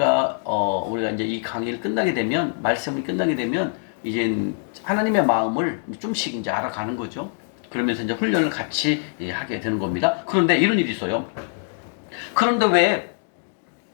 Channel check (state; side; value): silent; right; digital silence